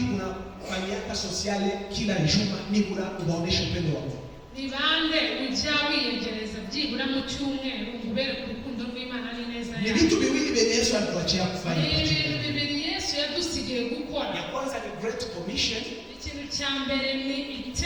unafanyaka sociale kila juma nibura ubaonesha upendo wa Mungu? Ni bande ujya wiyegereza byibura mu cyumweru ubere ku rukundo rw'Imana ari neza yawe. Ni vitu viwili vyenye Yesu alituachia kufanya. Ni bibiri Yesu yadusigiye gukora. Ya kwanza ni Great Commission. Ikintu cya mbere ni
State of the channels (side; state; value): both; identical; correlation 1.00